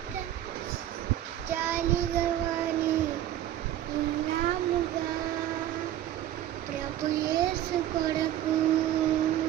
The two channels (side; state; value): left; quieter; 12.5 dB